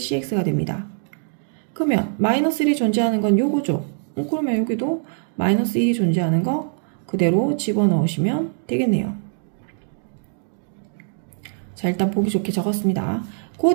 됩니다. 그러면 마이너스 1이 존재하는 건 요거죠. 그러면 여기도 마이너스 1이 존재하는 거 그대로 집어넣으시면 되겠네요. 자, 일단 보기 좋게 적었습니다.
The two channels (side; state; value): left; silent; 64 dB below the other